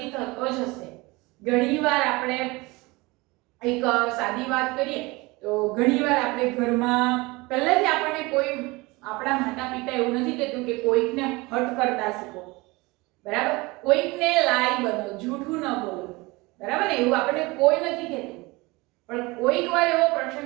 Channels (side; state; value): left; quieter; 23.4 dB